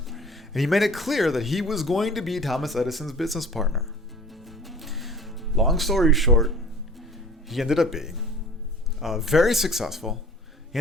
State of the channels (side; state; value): both; normal; correlation 0.44